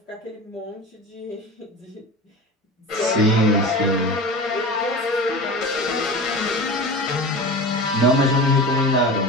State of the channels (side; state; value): both; normal; correlation 0.31